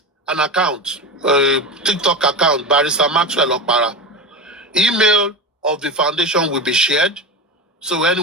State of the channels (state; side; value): normal; both; correlation 0.23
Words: an account, a TikTok account, Barrister Maxwell Okpara. Email of the foundation will be shared, so